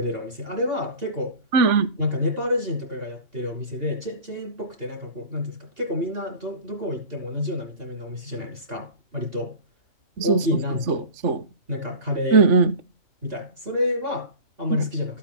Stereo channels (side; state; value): left; late; 3.4 ms